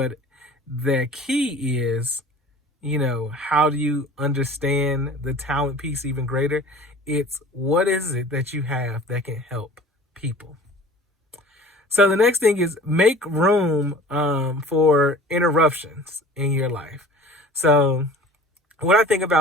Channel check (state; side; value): normal; both; correlation 0.44